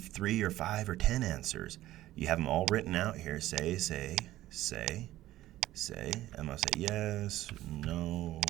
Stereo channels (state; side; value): quieter; left; 15.1 dB